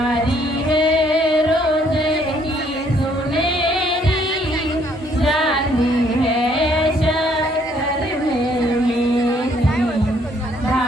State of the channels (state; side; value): normal; both; correlation 0.66